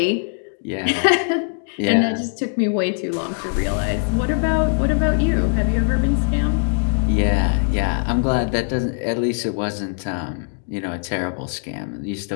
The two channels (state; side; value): silent; right; digital silence